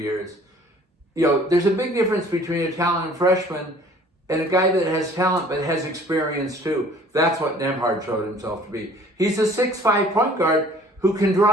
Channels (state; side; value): normal; both; correlation 0.53